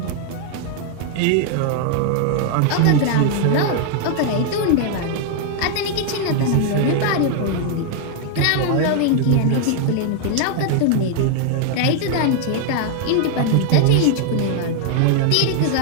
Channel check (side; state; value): both; different; correlation 0.00